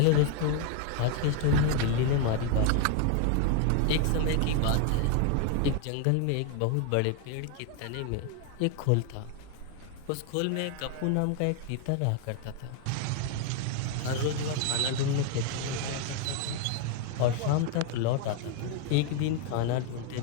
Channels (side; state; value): both; different; correlation 0.01